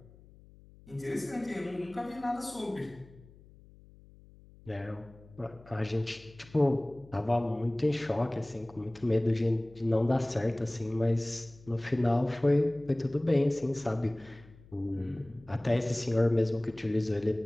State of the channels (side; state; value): left; noise; hum, 23 dB below the sound